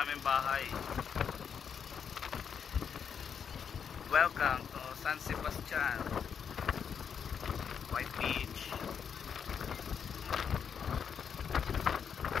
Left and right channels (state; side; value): quieter; right; 7.2 dB